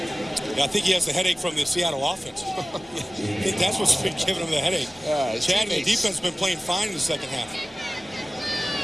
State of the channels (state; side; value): normal; both; correlation 0.97